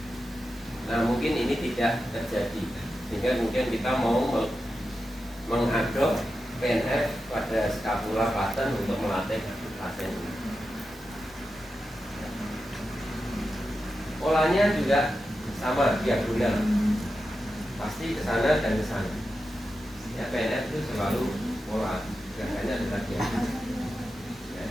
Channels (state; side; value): normal; both; correlation 0.90